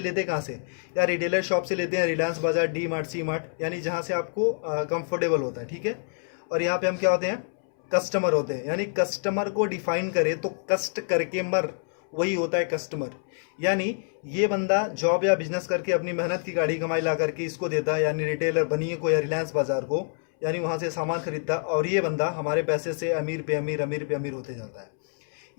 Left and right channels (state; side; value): silent; right; 60 dB below the other